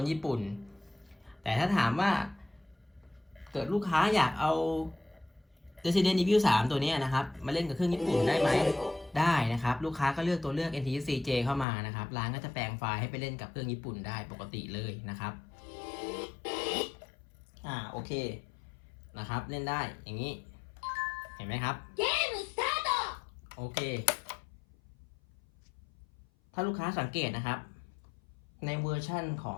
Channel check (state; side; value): drops out; right; at 11.7 s